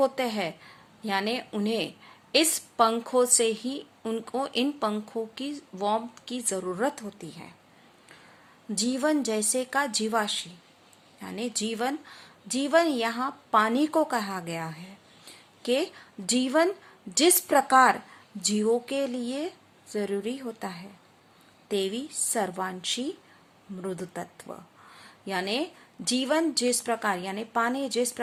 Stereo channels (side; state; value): both; identical; correlation 1.00